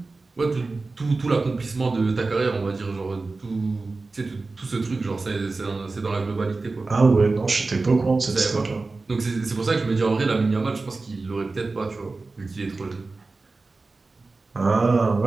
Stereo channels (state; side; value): quieter; left; 3.6 dB